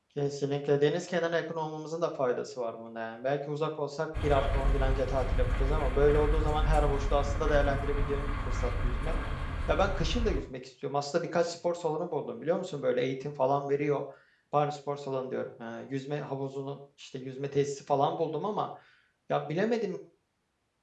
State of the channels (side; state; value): both; identical; correlation 1.00